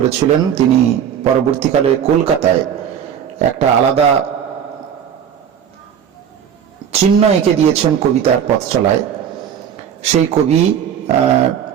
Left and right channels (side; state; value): left; quieter; 8.6 dB